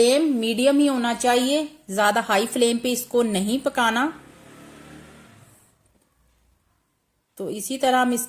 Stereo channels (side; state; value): both; identical; correlation 1.00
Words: मीडियम ही होना चाहिए, ज्यादा हाई फ्लेम पे इसको नहीं पकाना। तो इसी तरह हम